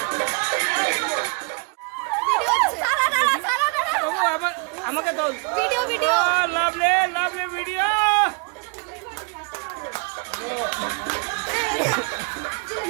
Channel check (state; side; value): quieter; left; 34.4 dB